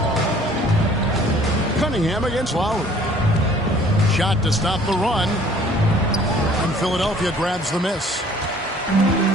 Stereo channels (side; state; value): both; normal; correlation 0.54